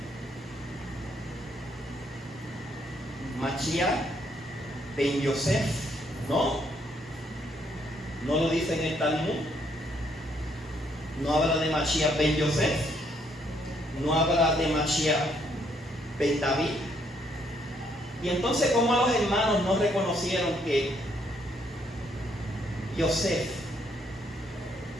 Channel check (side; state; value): both; normal; correlation 0.71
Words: Mashiach ben Yosef, ¿no? No lo dice en el Talmud. No habla de Mashiach ben Yosef. No habla de Mashiach ben David. Y entonces, ¿cómo los hermanos no reconocieron que Yosef